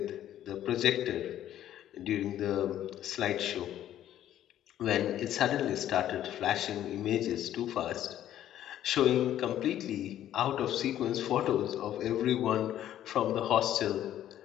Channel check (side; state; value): right; quieter; 11.8 dB